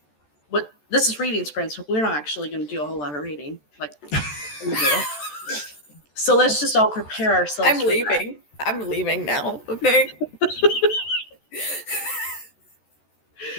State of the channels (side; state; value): right; late; 14 ms